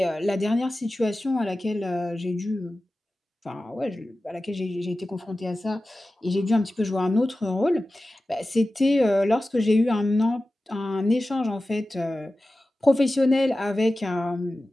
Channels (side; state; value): both; normal; correlation 0.95